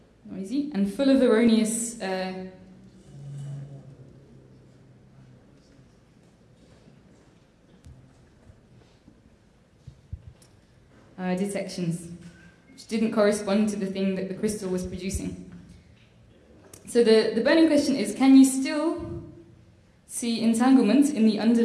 Noisy and full of erroneous detections, which didn't correspond to the thing that the crystal was producing. So the burning question is, can you still see entanglement in the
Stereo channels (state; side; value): identical; both; correlation 1.00